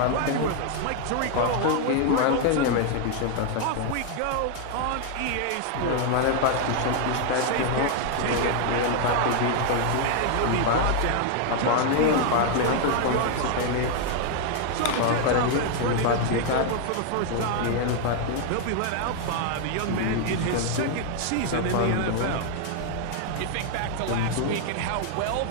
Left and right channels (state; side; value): different; both; correlation 0.00